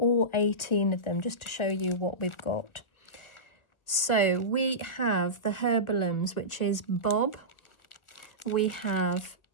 18 of them just to show you what we've got. So we have the Herbalums, which is Bob, we have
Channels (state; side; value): late; right; 1.4 ms